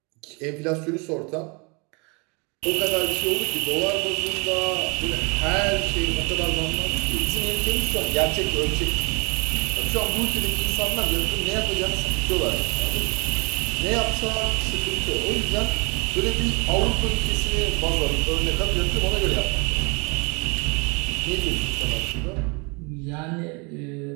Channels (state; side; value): quieter; left; 30.8 dB